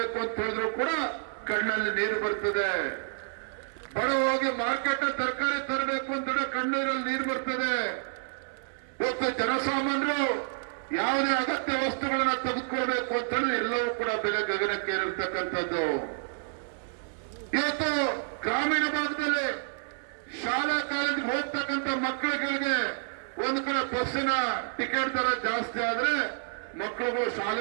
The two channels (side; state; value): left; silent; digital silence